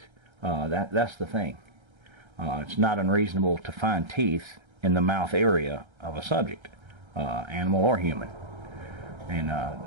that's the thing. It's not unreasonable to find teeth in the mouth area of a subject, animal or human. And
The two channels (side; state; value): left; late; 1.3 ms